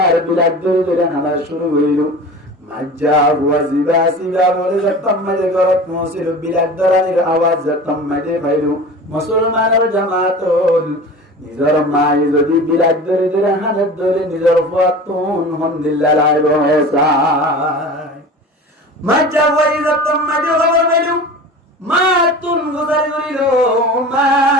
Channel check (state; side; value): normal; both; correlation 0.36